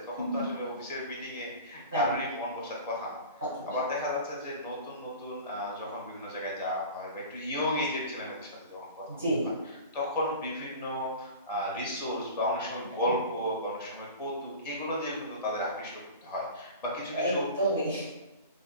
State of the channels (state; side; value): inverted; both; correlation -0.35